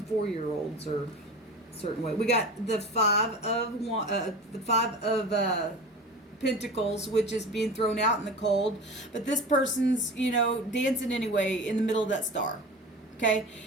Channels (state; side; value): normal; both; correlation 0.33